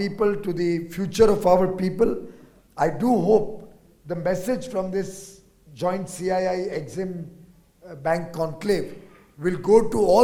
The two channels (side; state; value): both; identical; correlation 1.00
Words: to the future of our people. I do hope the message from this joint CII-EXIM Bank Conclave will go to